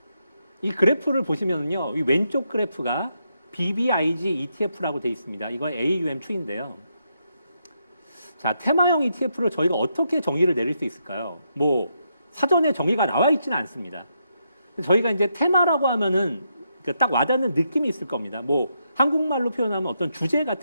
이 그래프를 보시면요, 이 왼쪽 그래프가 BBIG ETF라고 되어 있습니다. 이거 AUM 추인데요. 자, 테마형 ETF를 저희가 어떻게 정의를 내릴 수 있을까요? 사전에 정의가 나와 있지는 않습니다. 저희가 이제 테마라고 하면은 딱 와닿는 느낌이 있을 겁니다. 한국말로 표현하면 어떤 주제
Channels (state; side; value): inverted; both; correlation -0.80